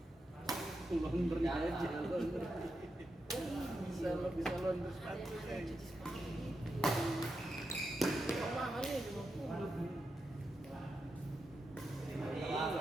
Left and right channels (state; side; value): normal; both; correlation 0.87